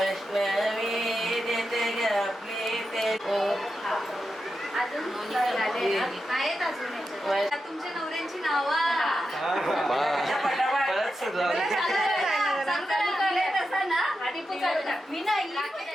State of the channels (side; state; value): both; normal; correlation 0.89